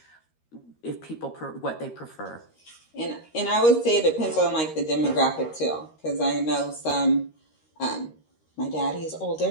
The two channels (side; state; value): right; late; 13 ms